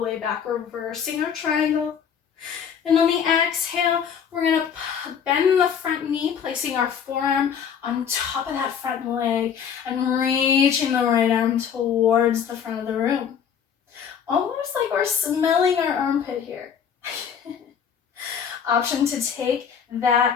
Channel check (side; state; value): right; quieter; 7.6 dB